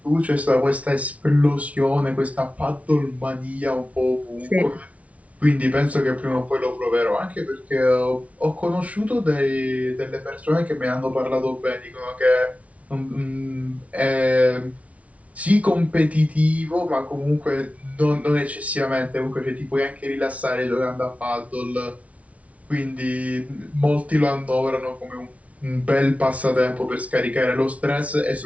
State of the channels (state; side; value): late; left; 0.066 ms